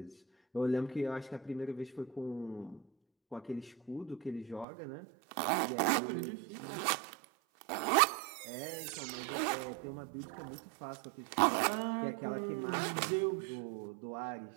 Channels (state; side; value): drops out; left; at 4.7 s